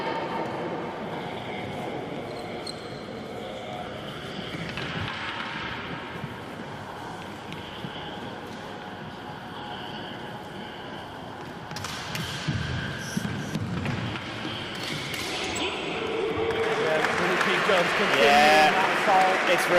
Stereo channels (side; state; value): both; identical; correlation 1.00